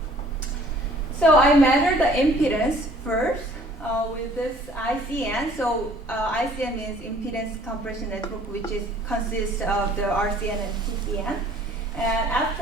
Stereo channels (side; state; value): both; normal; correlation 0.55